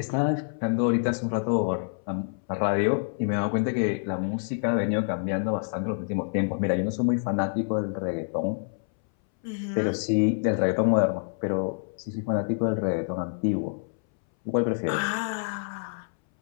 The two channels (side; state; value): right; silent; 60 dB below the other